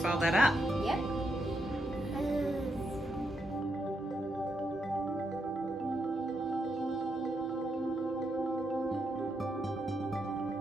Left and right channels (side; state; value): both; normal; correlation 0.81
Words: all that up. Yep.